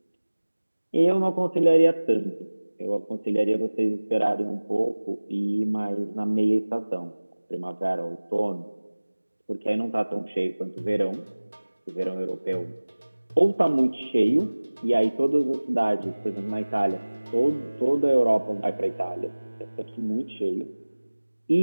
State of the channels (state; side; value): inverted; both; correlation -1.00